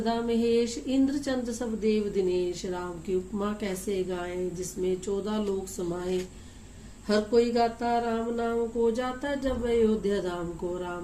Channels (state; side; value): identical; both; correlation 1.00